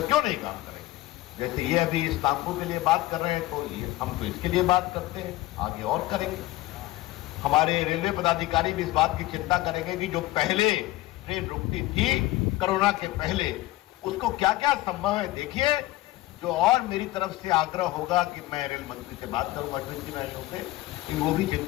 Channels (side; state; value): right; quieter; 17.7 dB